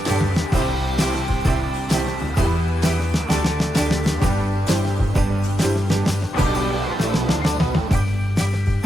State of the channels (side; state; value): both; normal; correlation 0.85